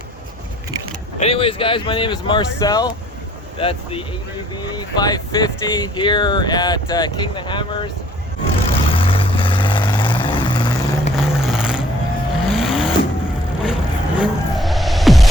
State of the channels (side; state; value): both; normal; correlation 0.58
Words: Anyways, guys, my name is Marcel. That's the ADV 550 here at King the Hammers.